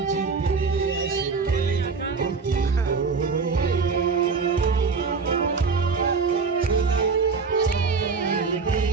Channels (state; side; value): quieter; left; 4.9 dB